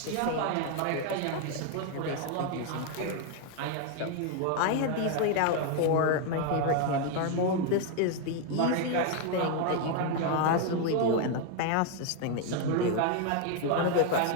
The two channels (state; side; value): different; both; correlation 0.01